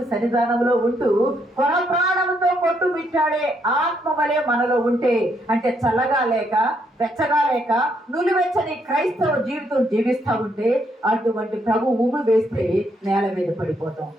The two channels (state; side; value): normal; both; correlation 0.74